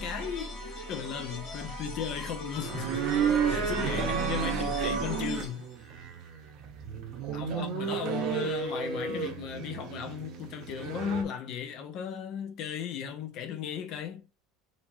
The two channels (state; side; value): normal; both; correlation 0.33